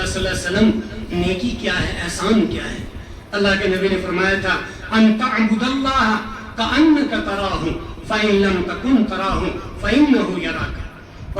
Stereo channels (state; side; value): identical; both; correlation 1.00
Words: صلی اللہ علیہ وسلم نیکی کیا ہے، احسان کیا ہے؟ اللہ کے نبی نے فرمایا تھا ان تعبد اللہ کأنک تراہ فإن لم تکن تراہ فإنہ یراک۔